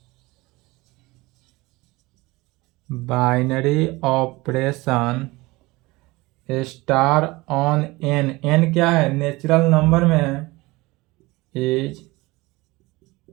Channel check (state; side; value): quieter; left; 21.9 dB